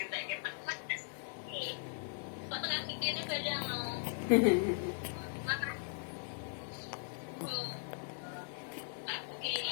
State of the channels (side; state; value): right; silent; digital silence